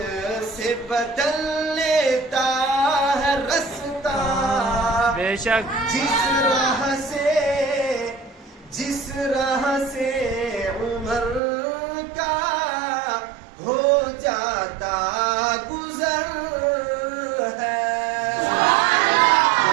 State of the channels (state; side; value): drops out; left; at 11.4 s